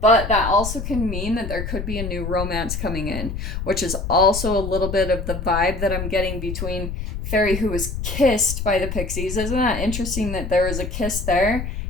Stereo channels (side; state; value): left; noise; rumble, 5 dB below the sound